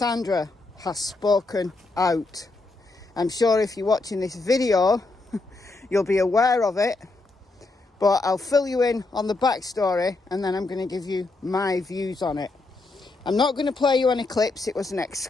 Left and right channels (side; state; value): right; quieter; 3.3 dB